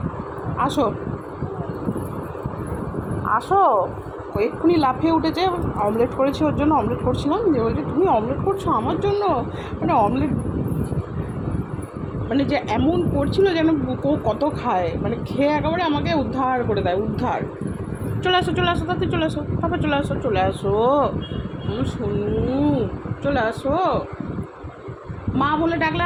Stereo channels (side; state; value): both; identical; correlation 1.00